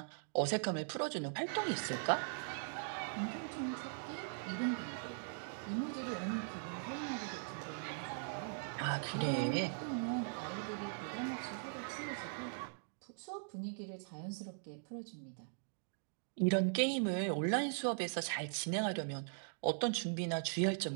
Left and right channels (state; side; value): silent; left; digital silence